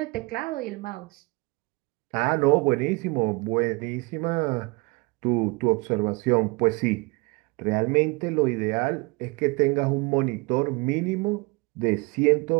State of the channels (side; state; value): left; quieter; 27.2 dB